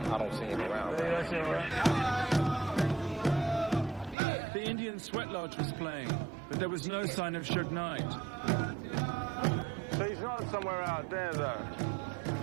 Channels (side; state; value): left; drops out; at 4.2 s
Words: don't see him around. You don't see him around? The Indian Sweat Lodge was playing, but there was no sign of Suge Knight. So he's not somewhere out there, though.